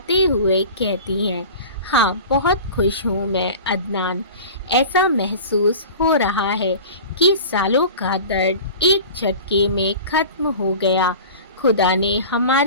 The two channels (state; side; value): inverted; both; correlation -0.37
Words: हुए कहती हैं, हाँ बहुत खुश हूँ मैं अदनान। ऐसा महसूस हो रहा है कि सालों का दर्द एक झटके में ख़त्म हो गया। खुदा ने